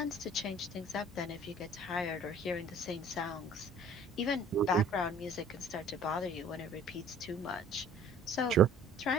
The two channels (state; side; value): normal; both; correlation 0.52